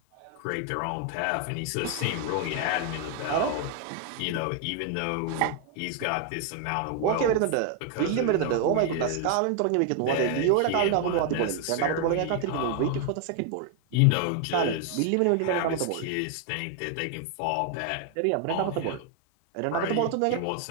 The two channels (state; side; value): different; both; correlation 0.00